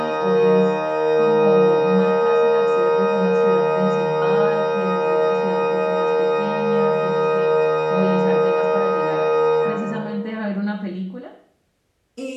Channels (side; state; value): both; identical; correlation 1.00